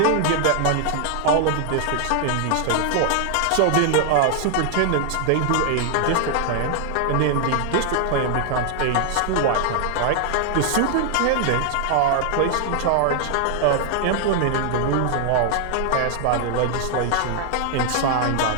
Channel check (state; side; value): different; both; correlation 0.00